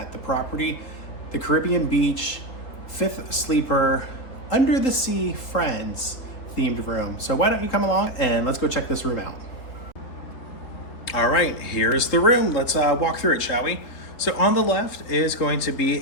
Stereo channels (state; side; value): late; right; 3.8 ms